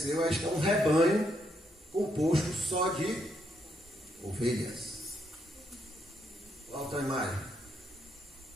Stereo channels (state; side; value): normal; both; correlation 0.76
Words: este é um rebanho composto só de ovelhas. Outra imagem.